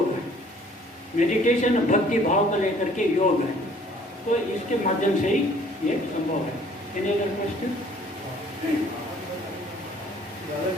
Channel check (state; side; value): normal; both; correlation 0.57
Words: है, मेडिटेशन भक्ति भाव को लेकर के योग है। तो इसके माध्यम से ही ये संभव है। क्वेश्चन,